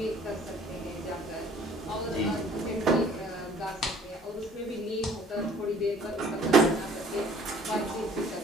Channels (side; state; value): both; normal; correlation 0.54